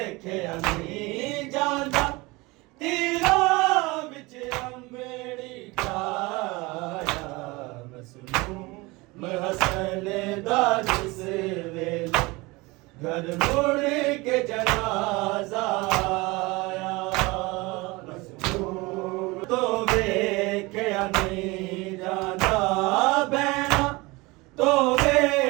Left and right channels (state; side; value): quieter; left; 23.6 dB